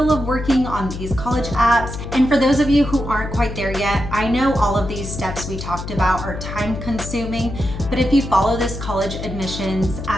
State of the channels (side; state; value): left; noise; hum, 8 dB below the sound